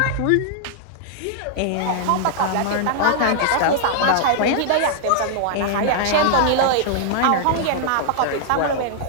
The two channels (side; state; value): both; different; correlation -0.01